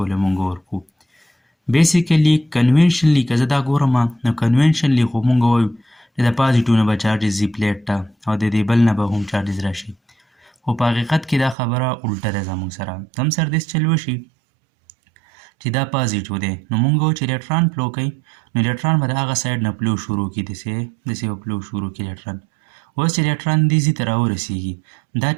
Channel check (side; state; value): left; drops out; at 11.6 s